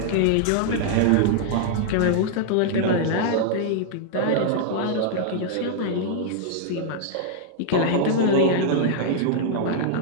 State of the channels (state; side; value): different; both; correlation -0.01